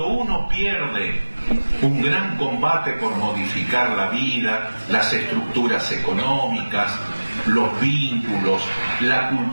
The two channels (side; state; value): both; inverted; correlation -1.00